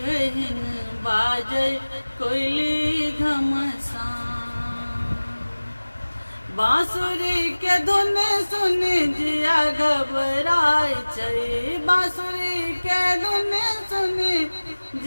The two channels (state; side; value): inverted; both; correlation -1.00